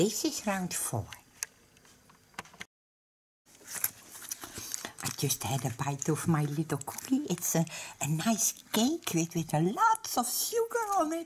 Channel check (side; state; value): both; identical; correlation 1.00